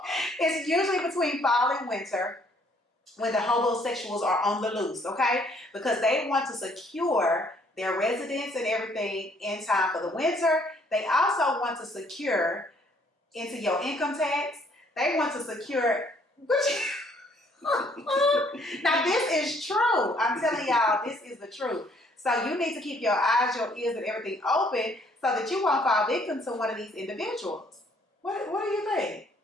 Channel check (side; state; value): both; normal; correlation 0.64